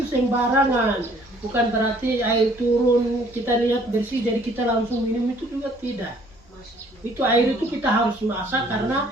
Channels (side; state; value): both; normal; correlation 0.59